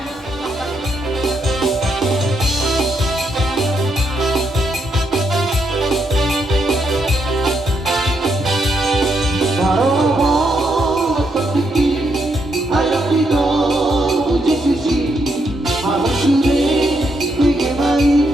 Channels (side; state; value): both; normal; correlation 0.78